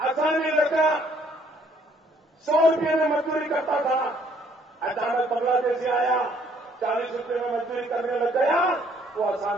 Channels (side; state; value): both; normal; correlation 0.64